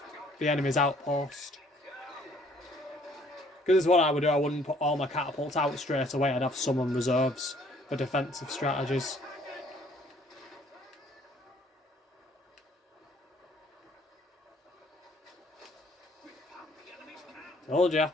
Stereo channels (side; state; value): both; normal; correlation 0.60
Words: the enemy's outpost. Because this is what I would do. I wouldn't put all my catapults out straight away. I'd have some on reserves for defensive strategies. Told ya.